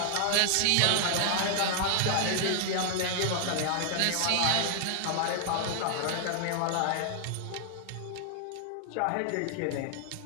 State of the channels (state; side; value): different; both; correlation 0.00